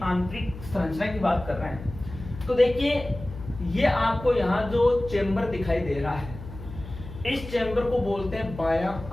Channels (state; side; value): noise; left; hum, 13 dB below the sound